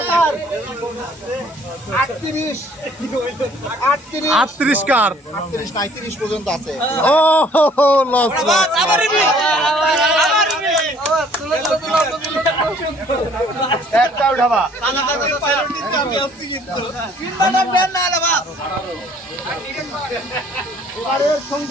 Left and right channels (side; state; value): both; normal; correlation 0.58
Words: 38 কার 38 না 30 পর্যন্ত আছে। ও লস একটা উঠাবা এবারের